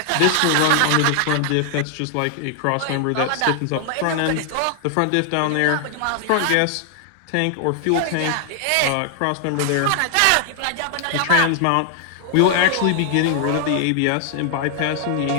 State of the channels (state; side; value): different; both; correlation 0.00